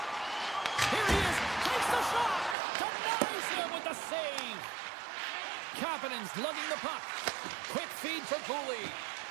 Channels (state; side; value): drops out; left; at 2.6 s